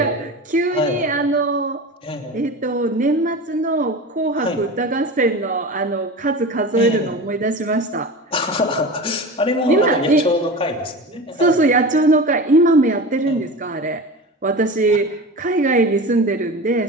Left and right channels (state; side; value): normal; both; correlation 0.30